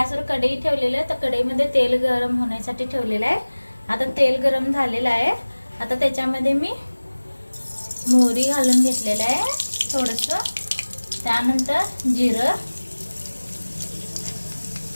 कढई ठेवलेली आहे, तर कढईमध्ये तेल गरम होण्यासाठी ठेवलेलं आहे। आता तेल गरम झालेलं आहे। आता त्याच्यामध्ये मी मोहरी घालून घेतलेलं आहे थोडंसं, त्यानंतर जिरं,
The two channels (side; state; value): both; inverted; correlation -1.00